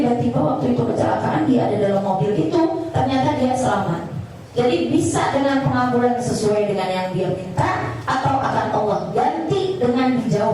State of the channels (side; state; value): both; identical; correlation 1.00